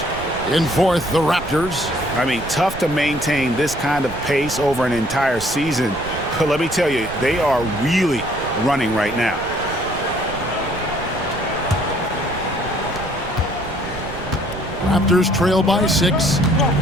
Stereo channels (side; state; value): right; noise; rumble, 12 dB below the sound